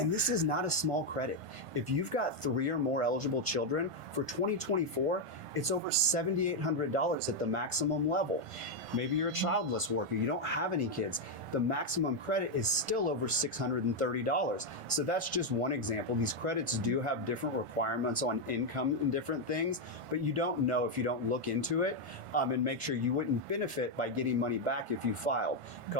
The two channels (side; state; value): left; late; 1.5 ms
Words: this is not a small credit. If you've got 3 or more eligible children, for 2024, it's over $7,800 at the maximum level. Maybe you're a childless worker, you don't have any kids. The maximum credit is still over $630. So that's just one example. These credits do have different requirements on income and different things, but you don't know if you don't look into it and make sure you wouldn't benefit by getting money back if you filed. A